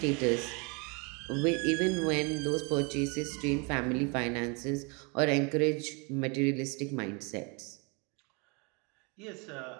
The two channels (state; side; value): quieter; left; 31.4 dB